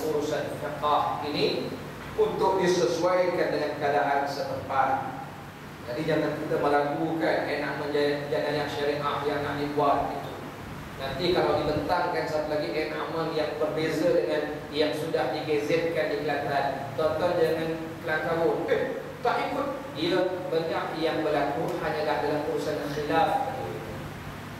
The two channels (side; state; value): both; identical; correlation 1.00